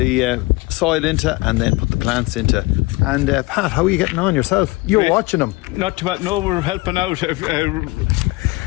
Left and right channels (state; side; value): quieter; right; 22.7 dB